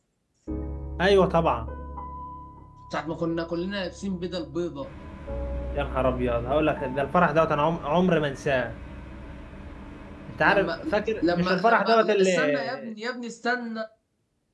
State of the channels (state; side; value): identical; both; correlation 1.00